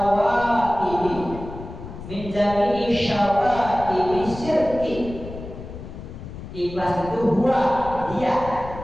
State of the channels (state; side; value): noise; left; rumble, 12 dB below the sound